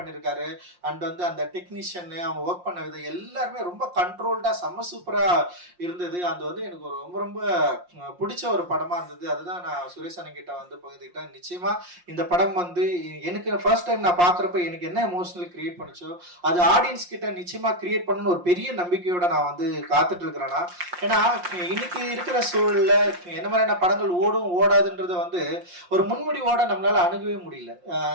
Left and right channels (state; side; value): late; left; 5.6 ms